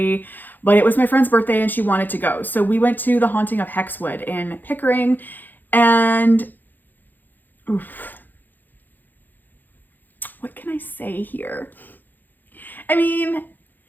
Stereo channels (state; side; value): late; right; 0.087 ms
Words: but it was my friend's birthday and she wanted to go. So we went to the Haunting of Hexwood in Pickering, and oof, what can I say here? I mean,